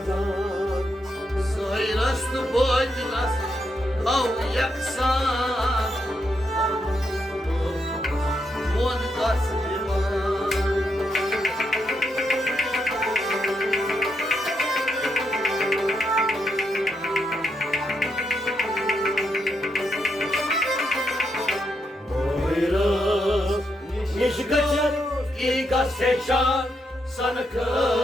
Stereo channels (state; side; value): normal; both; correlation 0.81